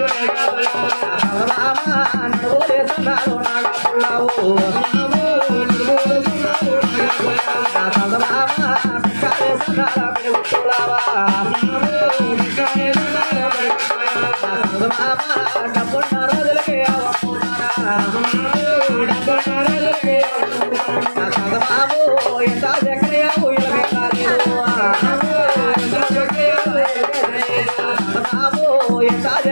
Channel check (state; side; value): inverted; both; correlation -1.00